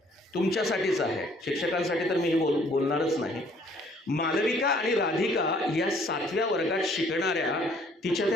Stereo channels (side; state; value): both; normal; correlation 0.60